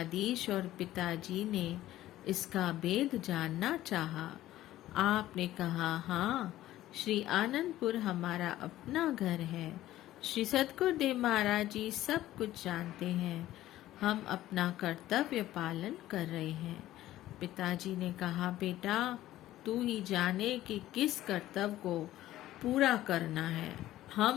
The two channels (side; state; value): right; quieter; 14.6 dB